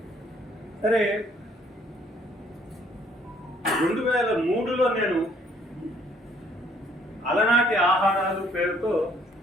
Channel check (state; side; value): normal; both; correlation 0.62